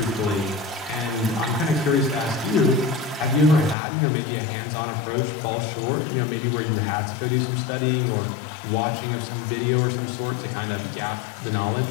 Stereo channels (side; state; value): right; drops out; at 3.8 s